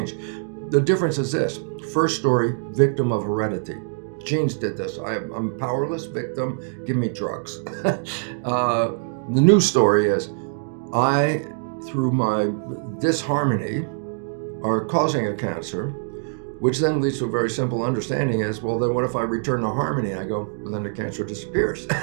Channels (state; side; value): silent; left; digital silence